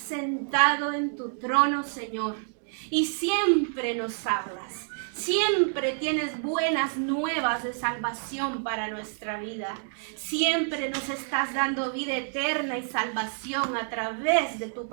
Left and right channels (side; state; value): left; silent; digital silence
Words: en tu trono, Señor, y siempre nos hablas. Siempre tienes buenas nuevas de salvación para nuestra vida. Siempre nos estás dando vida eterna y salvación a través de tu